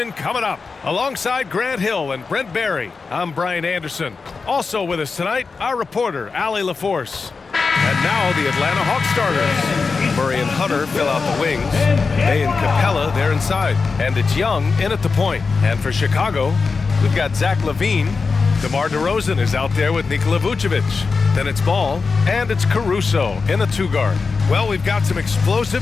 coming up. Alongside Grant Hill and Brent Barry, I'm Brian Anderson. Also with us tonight, our reporter, Allie LaForce. And now the Atlanta Hawks starters. Murray and Hunter fill out the wings. Bay and Capella, they're inside. And it's Young in at the point. And for Chicago, we've got Zach LaVine. DeMar DeRozan is out there with Nikola Vucevic. Then it's Ball, and it's Caruso in the two-guard. Well, we've got some explosive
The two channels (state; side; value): quieter; right; 4.6 dB